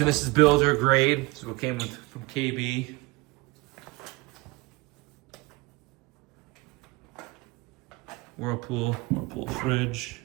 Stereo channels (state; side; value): quieter; left; 22.5 dB